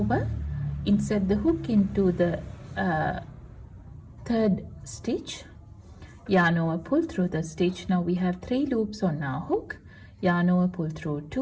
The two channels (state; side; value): identical; both; correlation 1.00